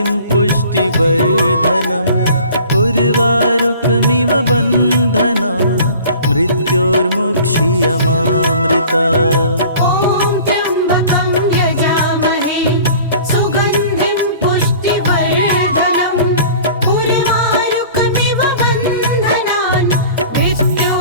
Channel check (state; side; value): inverted; both; correlation -0.46